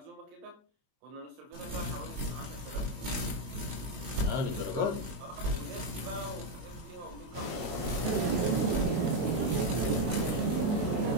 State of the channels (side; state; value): left; late; 23 ms